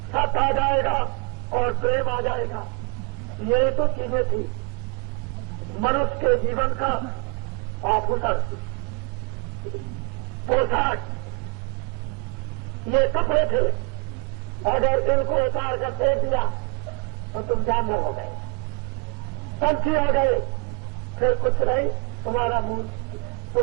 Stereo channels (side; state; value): left; quieter; 32.9 dB